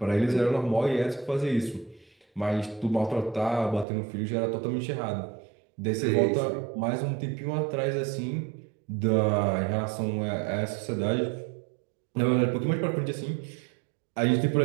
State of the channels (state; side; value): drops out; left; at 3.9 s